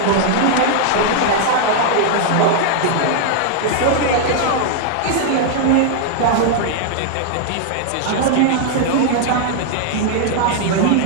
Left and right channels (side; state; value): both; different; correlation -0.01